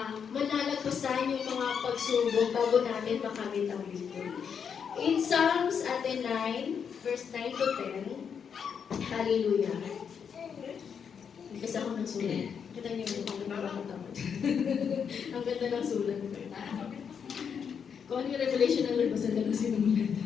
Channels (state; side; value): quieter; right; 7.0 dB